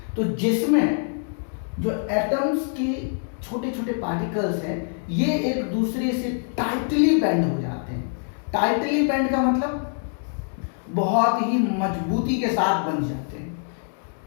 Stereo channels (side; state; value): right; silent; 62 dB below the other